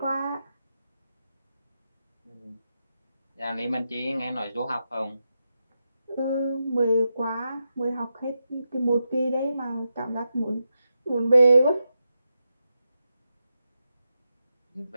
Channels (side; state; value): both; inverted; correlation -0.87